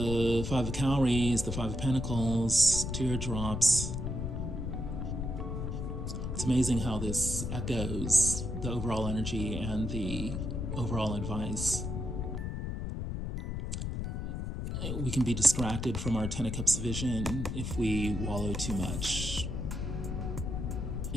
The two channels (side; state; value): left; noise; rumble, 3 dB below the sound